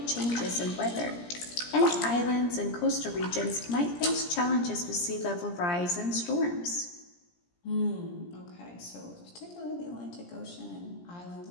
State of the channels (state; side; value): late; right; 17 ms